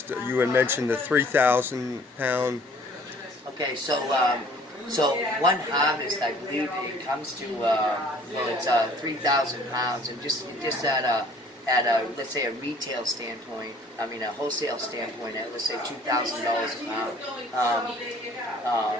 You had mentioned the 3,000 pound. Okay, so one harvest, I believe it comes to, it's 3,000 pounds, and just at at a, let's say, a retail standpoint, I mean a wholesale standpoint, at let's say $2,000 a pound.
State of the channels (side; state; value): both; normal; correlation 0.54